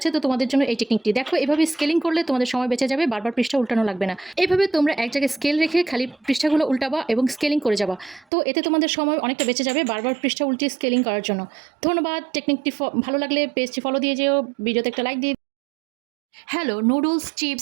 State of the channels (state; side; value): drops out; left; at 8.2 s